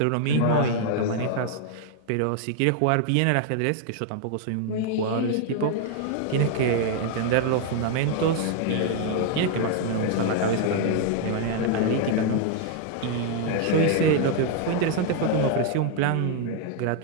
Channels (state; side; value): different; both; correlation 0.00